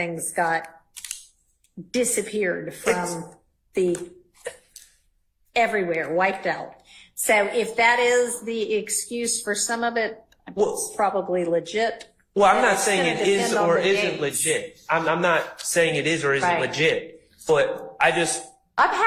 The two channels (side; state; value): both; identical; correlation 1.00